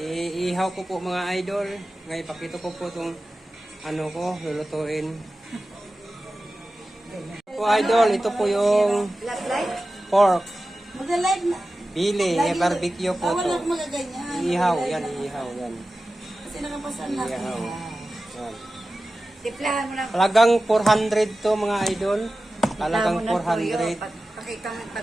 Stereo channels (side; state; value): both; normal; correlation 0.95